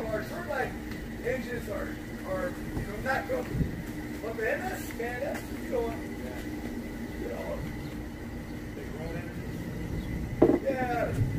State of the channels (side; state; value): both; identical; correlation 1.00